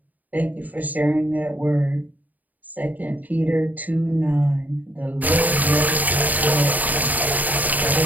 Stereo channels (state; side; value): late; left; 0.080 ms